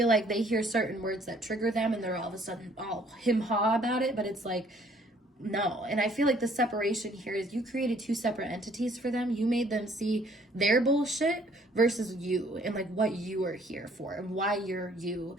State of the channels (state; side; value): normal; both; correlation 0.60